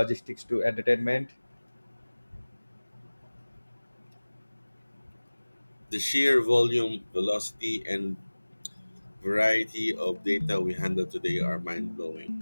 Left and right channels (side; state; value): both; inverted; correlation -1.00